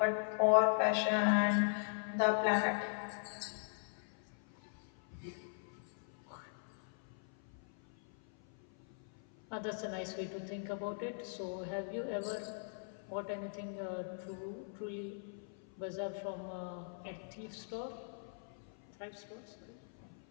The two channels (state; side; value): silent; right; 51 dB below the other